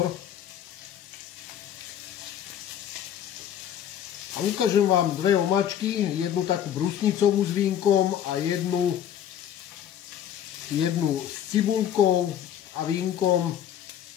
A ukážem vám dve omáčky, jednu takú brusnicovú s vínkom a jednu s cibulkou a vínkom,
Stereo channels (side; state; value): right; quieter; 10.1 dB